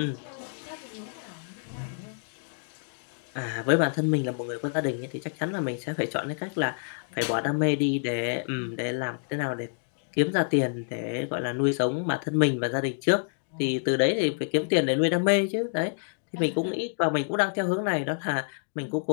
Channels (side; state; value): right; silent; digital silence